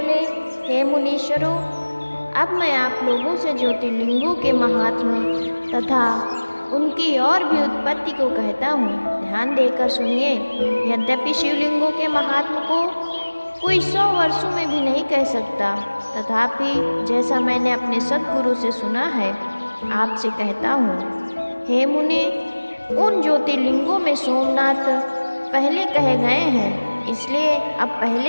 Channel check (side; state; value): both; inverted; correlation -1.00